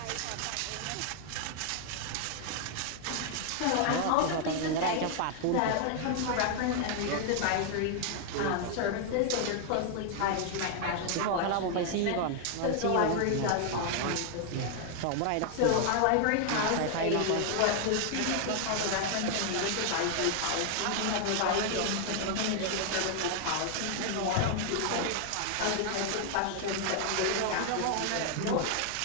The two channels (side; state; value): both; different; correlation 0.00